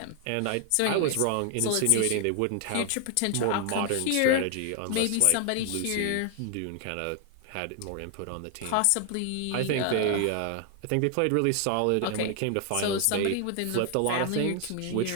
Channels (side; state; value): both; different; correlation 0.00